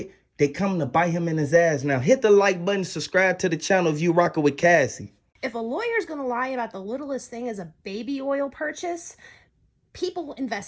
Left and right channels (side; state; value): both; identical; correlation 1.00